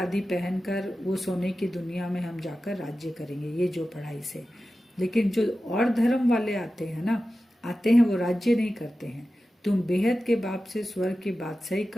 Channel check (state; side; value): normal; both; correlation 0.94